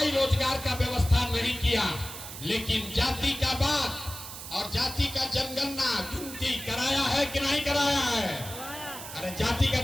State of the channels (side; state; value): right; noise; hiss, 11 dB below the sound